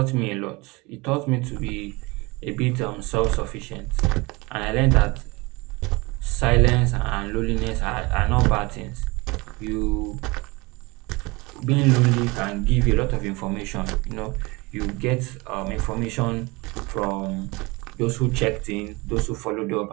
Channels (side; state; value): left; quieter; 24.7 dB